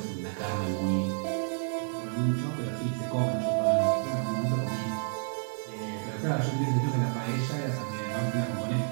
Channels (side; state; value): left; silent; 58 dB below the other